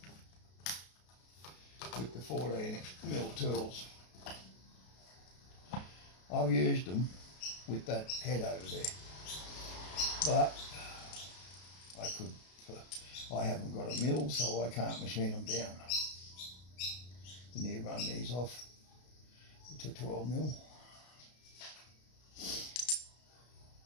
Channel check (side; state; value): right; late; 33 ms